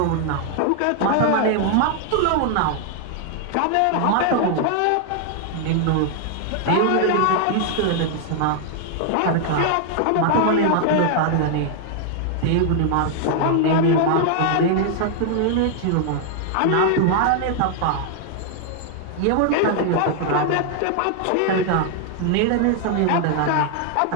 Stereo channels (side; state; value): both; different; correlation 0.00